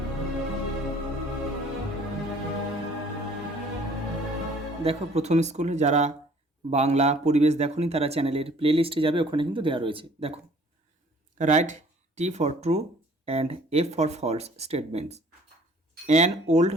দেখো, প্রথম স্কুল যারা বাংলা পরিবেশ দেখোনি তারা চ্যানেলের প্লে লিস্টে যাবে, ওখানে কিন্তু দেওয়া রয়েছে। দেখো, write T for true and F for false statements. An old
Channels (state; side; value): normal; both; correlation 0.55